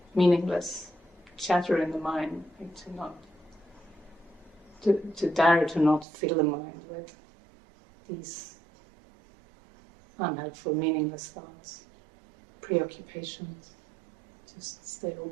meaningless chatter in the mind, to dare to not fill the mind with these unhelpful, meaningless thoughts, preoccupations. Just stay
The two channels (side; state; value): left; drops out; at 6.1 s